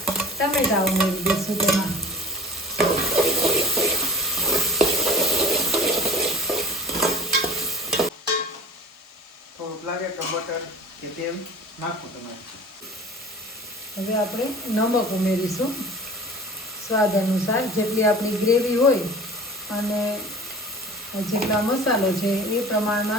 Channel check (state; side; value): normal; both; correlation 0.41